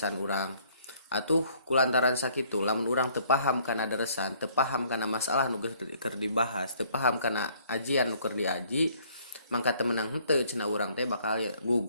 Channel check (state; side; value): inverted; both; correlation -0.61